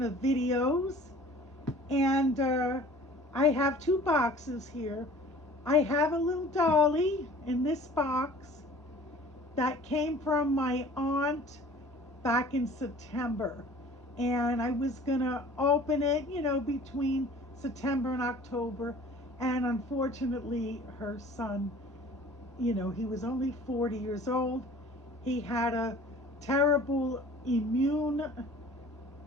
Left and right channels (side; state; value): both; normal; correlation 0.47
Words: of videos, and I have two boxes here. I have a little Dolly in this box that came from my aunt back in September, and I was gonna open it, between September and October, and unfortunately her son, he was only 40 years old. He had a terrible